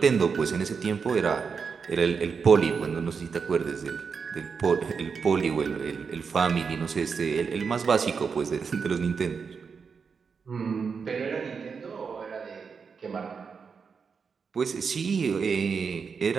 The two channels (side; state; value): left; quieter; 5.7 dB